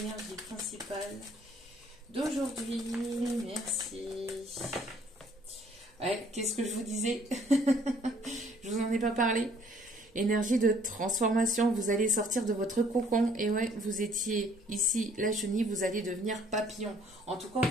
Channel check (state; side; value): normal; both; correlation 0.60